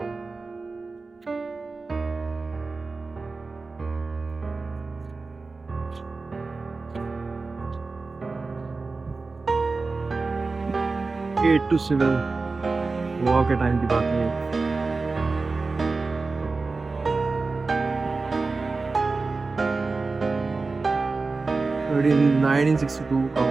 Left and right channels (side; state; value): left; quieter; 3.9 dB